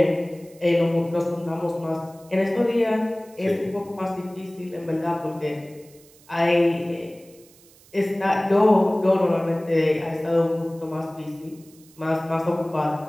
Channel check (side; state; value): right; noise; hiss, 26 dB below the sound